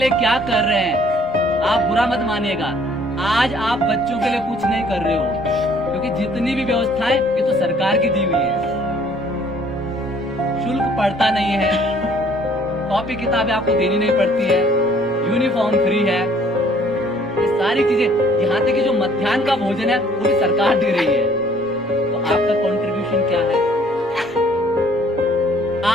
क्या कर रहे हैं, आप बुरा मत मानिएगा। आज आप बच्चों के लिए कुछ नहीं कर रहे हो, क्योंकि जितनी भी व्यवस्थाएं ये तो सरकार की दी हुई है। शुल्क पड़ता नहीं है, कॉपी किताबें आपको देनी नहीं पड़ती है, यूनिफॉर्म फ्री है, ये सारी चीजें, यहाँ तक कि जो मध्याह्न का भोजन है वो भी सरकार दे रही है। तो आपका कंट्रीब्यूशन क्या है?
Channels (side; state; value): right; noise; rumble, 29 dB below the sound